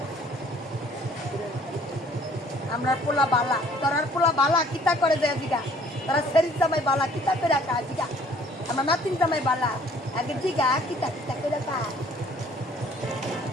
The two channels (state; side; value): normal; both; correlation 0.57